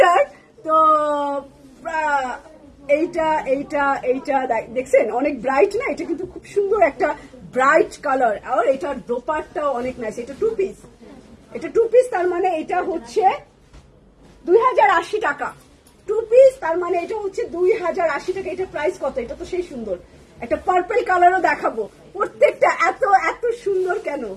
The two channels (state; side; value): identical; both; correlation 1.00